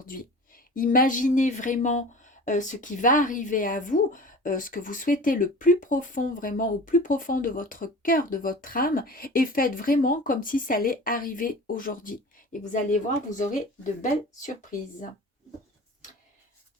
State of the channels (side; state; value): both; normal; correlation 0.38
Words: Imaginez vraiment ce qui va arriver à vous, ce que vous souhaitez le plus profond, vraiment au plus profond de votre cœur, de votre âme, et faites vraiment comme si ça allait arriver aujourd'hui. Et vous allez voir, vous aurez de belles surprises.